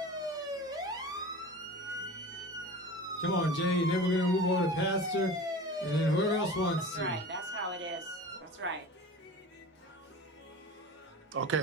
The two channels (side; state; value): both; normal; correlation 0.36